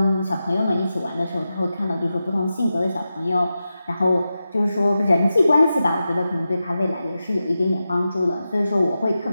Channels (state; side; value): inverted; both; correlation -0.91